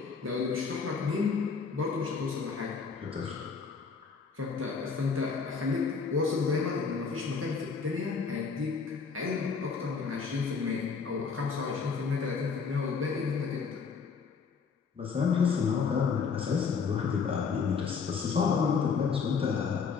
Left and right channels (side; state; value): right; quieter; 5.5 dB